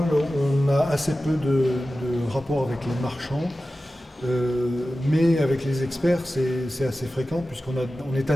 on a assez peu de rapports avec les marchands, mais avec les experts, c'est assez fréquent puisqu'on est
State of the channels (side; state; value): both; normal; correlation 0.94